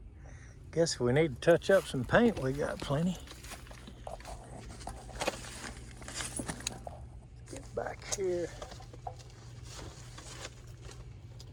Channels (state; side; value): identical; both; correlation 1.00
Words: guess we need to touch up some paint. We got plenty. Back here,